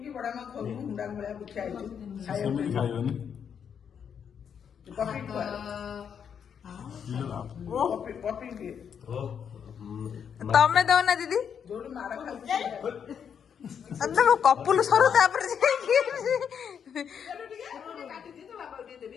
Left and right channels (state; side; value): quieter; right; 7.6 dB